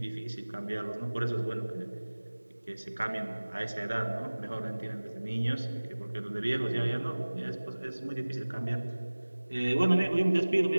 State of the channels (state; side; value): inverted; both; correlation -1.00